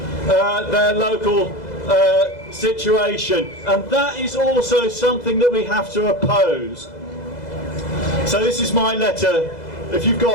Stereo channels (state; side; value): late; right; 2.0 ms